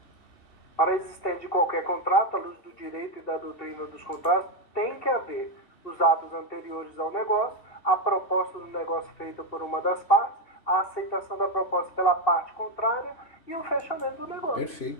Para a existência de qualquer contrato, à luz do direito e da doutrina dos contratos, tem que haver os atos anteriores ao negócio, a proposta do negócio feita por uma das partes, a aceitação da proposta pela parte contrária e o fechamento do negócio.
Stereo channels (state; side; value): late; right; 2.7 ms